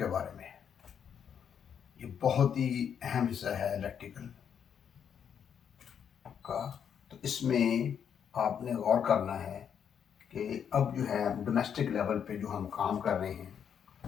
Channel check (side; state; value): right; quieter; 8.0 dB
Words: बारे में है। ये बहुत ही अहम हिस्सा है इलेक्ट्रिकल का। तो इसमें आपने गौर करना है कि अब जो है डोमेस्टिक लेवल पे जो हम काम कर रहे